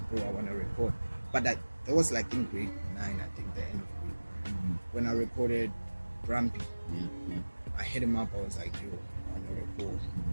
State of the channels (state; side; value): inverted; both; correlation -1.00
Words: bro, I want to record. But that was like in grade 9, I think, the end of grade. When I recorded Grumpy, I hit him up. I was like, yo, I want to record.